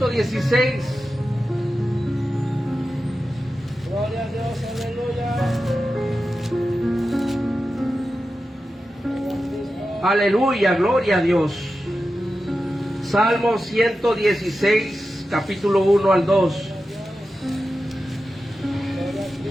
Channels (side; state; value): both; normal; correlation 0.92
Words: Gloria a Dios, aleluya. Aleluya, gloria a Dios. Salmo 116, capítulo 1 al 2.